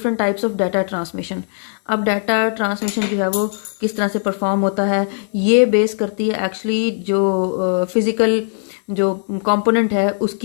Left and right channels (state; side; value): silent; right; 61 dB below the other